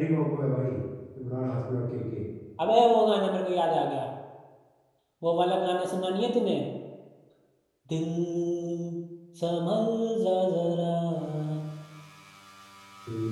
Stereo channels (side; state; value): both; identical; correlation 1.00